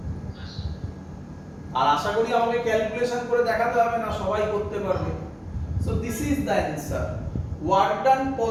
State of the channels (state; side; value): identical; both; correlation 1.00